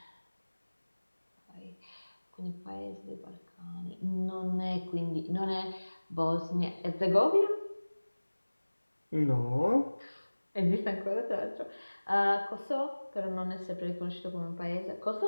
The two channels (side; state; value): both; inverted; correlation -1.00